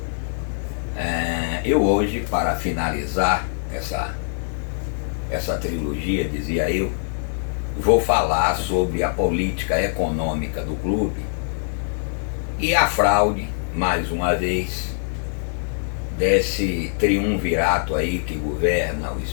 eu hoje, para finalizar essa trilogia, dizia eu, vou falar sobre a política econômica do clube e a fraude, mais uma vez, desse triunvirato aí que governa o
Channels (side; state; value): right; silent; digital silence